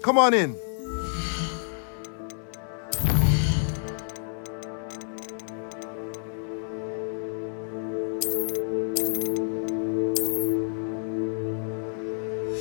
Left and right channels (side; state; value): right; silent; digital silence